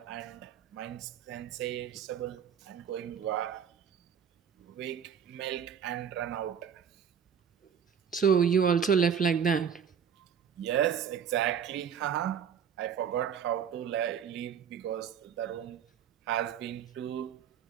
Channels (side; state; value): left; quieter; 7.8 dB